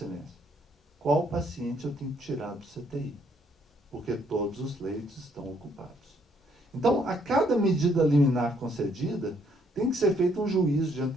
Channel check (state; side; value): normal; both; correlation 0.68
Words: qual paciente eu tenho que tirar do CTI? Porque todos os leitos estão ocupados. Então, a cada medida liminar concedida, tem que ser feito um juízo de